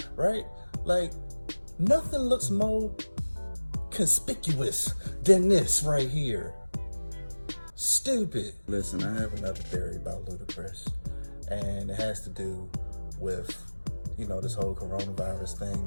right? Nothing looks more conspicuous than this right here. Stupid. Listen, I have another theory about Ludacris, and it has to do with, this whole coronavirus thing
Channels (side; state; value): both; inverted; correlation -1.00